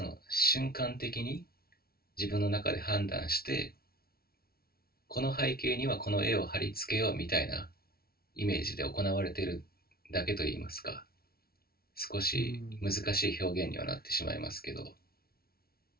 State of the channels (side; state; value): right; late; 0.44 ms